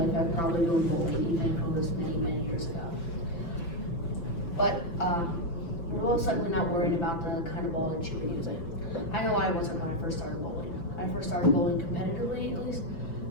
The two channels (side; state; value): right; late; 5.9 ms